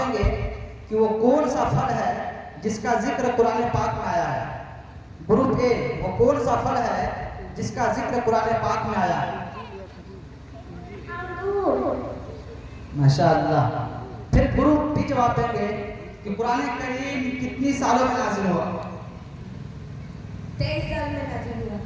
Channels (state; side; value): identical; both; correlation 1.00